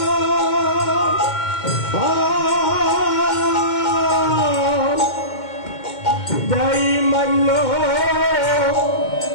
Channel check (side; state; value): right; late; 2.1 ms